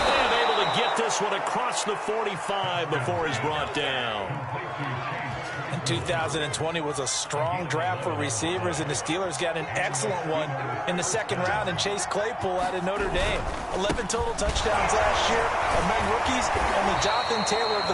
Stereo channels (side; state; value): both; identical; correlation 1.00